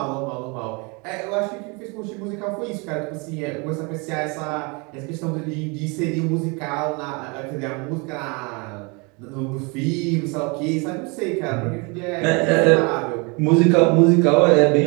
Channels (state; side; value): quieter; left; 30.3 dB